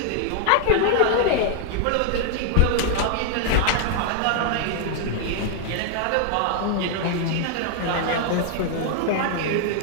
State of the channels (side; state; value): both; different; correlation 0.00